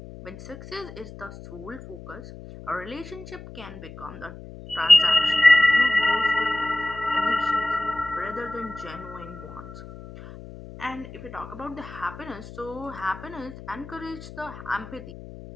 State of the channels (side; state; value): left; noise; hum, 15 dB below the sound